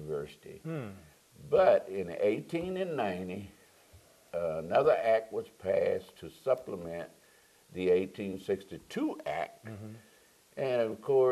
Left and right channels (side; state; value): both; identical; correlation 1.00